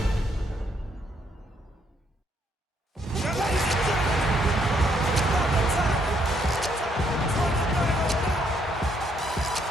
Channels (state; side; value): normal; both; correlation 0.72